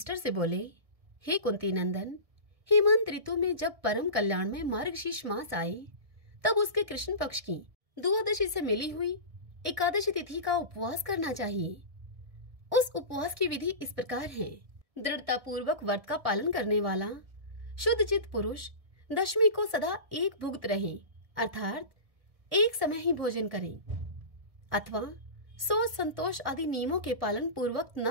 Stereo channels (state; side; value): late; left; 1.6 ms